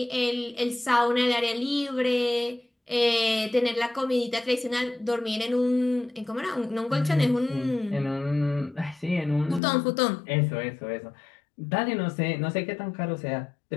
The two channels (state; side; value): drops out; right; at 9.6 s